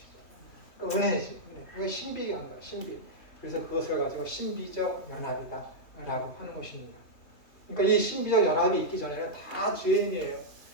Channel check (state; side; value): late; right; 2.9 ms